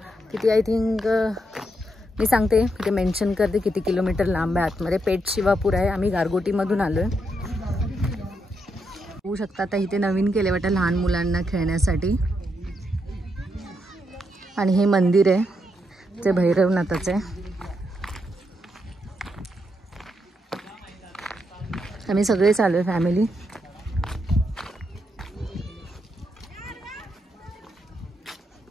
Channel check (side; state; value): both; normal; correlation 0.80